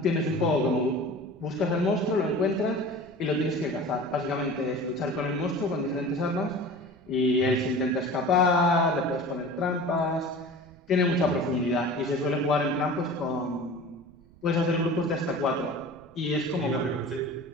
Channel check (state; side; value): noise; right; rumble, 26 dB below the sound